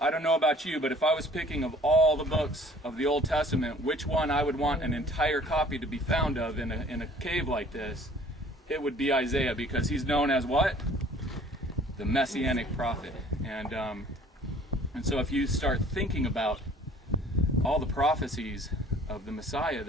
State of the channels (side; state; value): both; normal; correlation 0.52